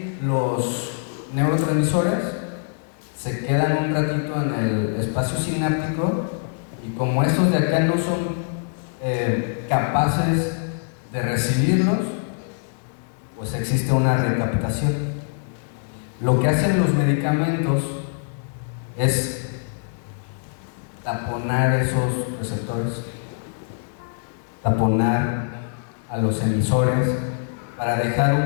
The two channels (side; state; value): right; silent; 63 dB below the other